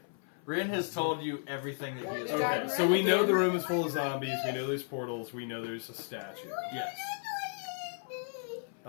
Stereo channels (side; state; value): right; silent; 55 dB below the other